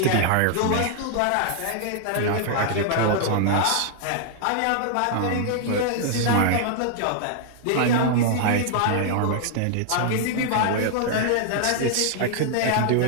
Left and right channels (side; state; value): both; different; correlation 0.00